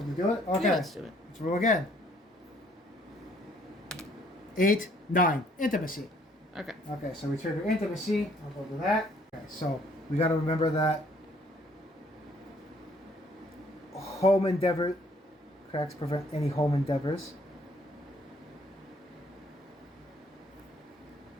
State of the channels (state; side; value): normal; both; correlation 0.63